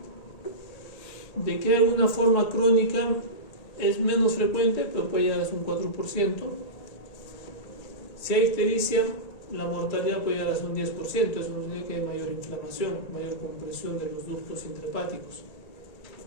De que hay una forma crónica es menos frecuente, pero puede llegar hasta un 4%. Si hay ictericia, la mortalidad puede llegar hasta un 10%, eso significa que hay mayor inflamación, mayor compresión de los ductos intrahepáticos.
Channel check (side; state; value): right; late; 1.8 ms